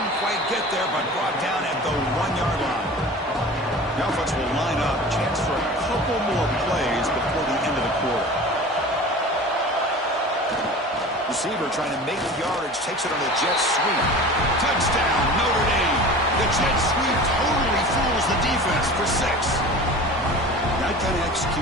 quite get there, but brought down at the 1-yard line. The offense will line up. Chance for a couple more plays before the end of the quarter. Receiver trying to make yardage, takes it on the jet sweep. Touchdown, Notre Dame. The jet sweep totally fools the defense for 6. That kind of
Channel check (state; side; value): normal; both; correlation 0.38